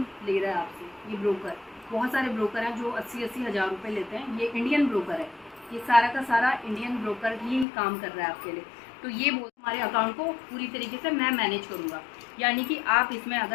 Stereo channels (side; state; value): right; drops out; at 7.7 s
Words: ले रहा है आपसे ये ब्रोकर। बहुत सारे ब्रोकर हैं जो 80-80 हज़ार रुपये लेते हैं। ये इंडियन ब्रोकर है, ये सारा का सारा इंडियन ब्रोकर ही काम कर रहा है आपके लिए। तो ये हमारे अकाउंट को पूरी तरीके से मैं मैनेज करूँगा, यानी कि आप इसमें